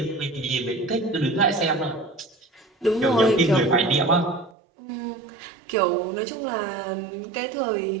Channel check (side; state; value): left; drops out; at 4.5 s